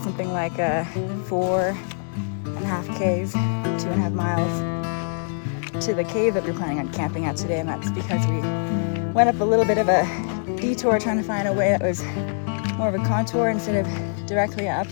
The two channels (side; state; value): right; silent; digital silence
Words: something like 4.5 Ks, 2.5 miles to the cave that we're planning on camping at today, and that's because we went up a little bit of a detour trying to find a way that was more of a contour instead of directly up,